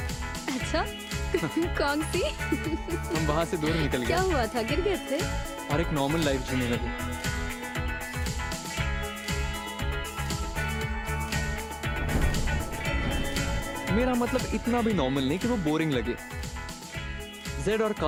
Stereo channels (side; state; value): both; identical; correlation 1.00